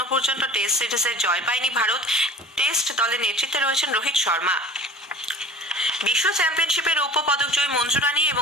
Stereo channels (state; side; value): normal; both; correlation 0.41